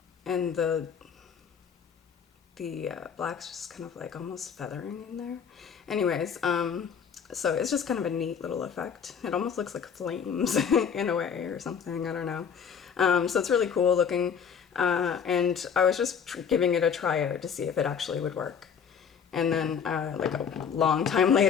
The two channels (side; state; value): right; quieter; 7.1 dB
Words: and the black's just kind of like almost feathering in there. Anyways, so it's just kind of a neat little effect. It almost looks like flames in a way or something, I don't know. So it's really cool looking, and I was just giving it a try out to see if it actually would work. And then like a long time